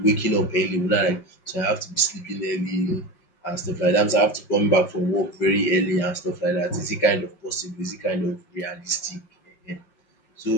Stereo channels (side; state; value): right; late; 5.3 ms